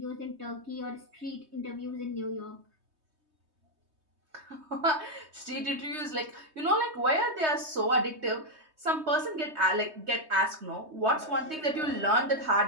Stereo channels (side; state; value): left; late; 3.2 ms